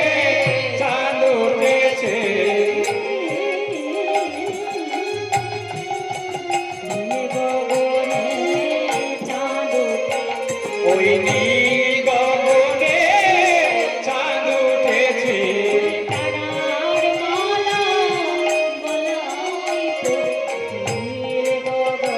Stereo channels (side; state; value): both; identical; correlation 1.00